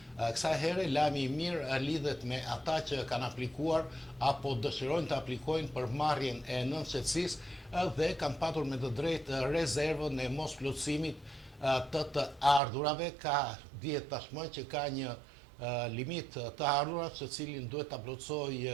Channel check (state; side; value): drops out; left; at 12.6 s